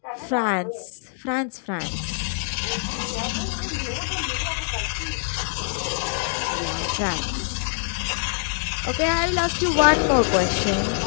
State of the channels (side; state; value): right; silent; 62 dB below the other